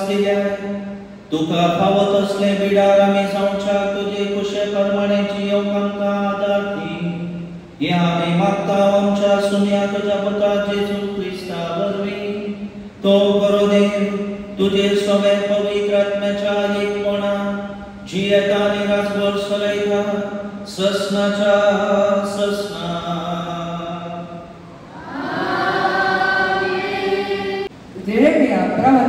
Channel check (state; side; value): identical; both; correlation 1.00